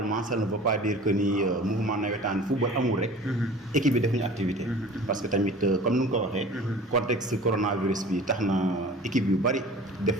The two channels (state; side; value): normal; both; correlation 0.42